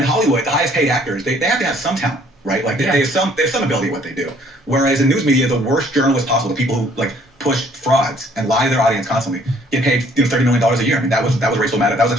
Hollywood, the highest paid actors, they have to have some talent, right? Like they have some ability at what they do. Whereas in news media, the worst journalists possible, the people who like push frauds and lie to their audience constantly, get paid $30 million a year. I mean, that was Rachel Maddow. That was a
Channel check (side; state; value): both; normal; correlation 0.60